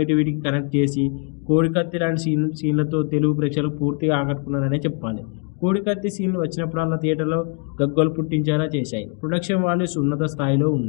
కనెక్ట్ చేసి కోడికత్తి లాంటి సీన్లతో తెలుగు ప్రేక్షకులకు పూర్తిగా ఆకట్టుకున్నారనే చెప్పాలి. కోడికత్తి సీన్లు వచ్చినప్పుడల్లా థియేటర్లో గగ్గోలు పుట్టించేలా చేశాయి. ప్రొడక్షన్ వాల్యూస్ ఉన్నత స్థాయిలో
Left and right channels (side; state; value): right; quieter; 36.8 dB